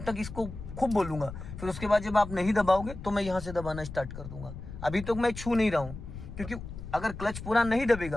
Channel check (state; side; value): noise; left; rumble, 11 dB below the sound